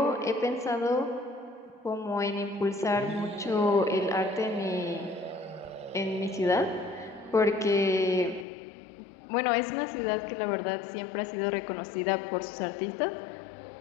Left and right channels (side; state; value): right; drops out; at 8.5 s